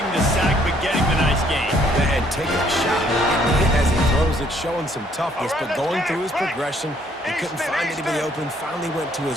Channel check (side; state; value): both; normal; correlation 0.65